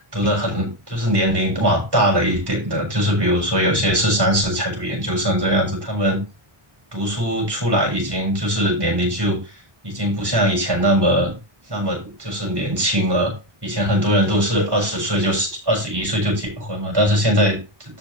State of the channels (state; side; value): late; left; 1.1 ms